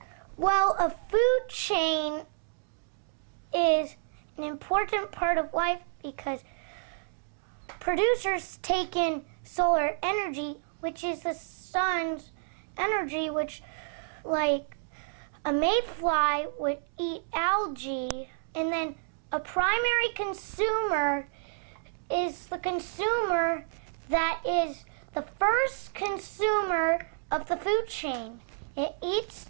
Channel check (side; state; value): left; silent; digital silence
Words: Well, a food chain is an important part of life because producers take in solar energy, which is the sun's energy, which, like, a mayfly would eat algae, and then a primary consumer is the consumer that is the first consumer of the food chain. It eats